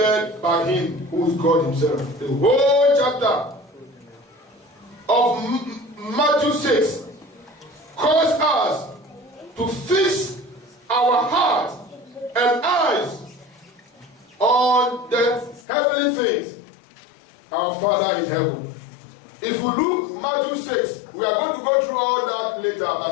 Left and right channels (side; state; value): right; drops out; at 15.6 s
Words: by Him who is God Himself. The whole chapter of Matthew 6 calls us to fix our heart and eyes on the heavenly things. Our Father in heaven. If we look Matthew 6, we are going to go through all that later, but